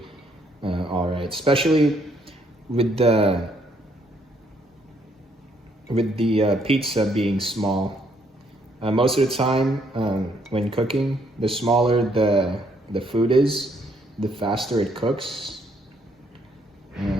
all right, especially with the pizza being small. Most of the time, when cooking, the smaller the food is, the faster it cooks.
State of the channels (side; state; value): both; normal; correlation 0.69